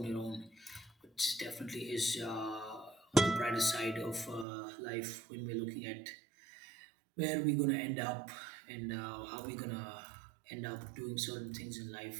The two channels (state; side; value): drops out; left; at 4.5 s